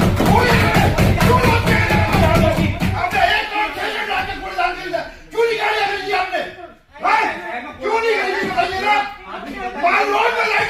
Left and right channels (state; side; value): identical; both; correlation 1.00